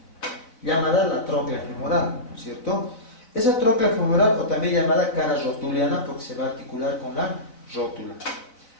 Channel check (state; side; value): late; right; 4.0 ms